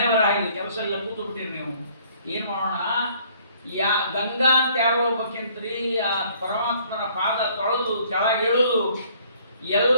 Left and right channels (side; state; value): both; inverted; correlation -0.60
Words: ಬರ ಆಗಿದೆ, ಕೆಲಸ ಎಲ್ಲ ಕೂತು ಬಿಟ್ಟಿರಿ ನೀವು, ಏನು ಮಾಡೋಣ? ಗಂಗಾ ಅಂತ ಯಾರೋ ಹೋಗ್ಬೇಕಂತ್ರಿ, ಆ ಪರಮಾತ್ಮನ ಪಾದ ತೊಳೆದು ಕೆಳಗಿಳಿದು